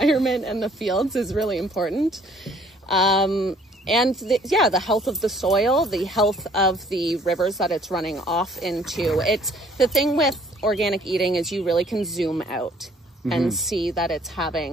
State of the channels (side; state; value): both; normal; correlation 0.59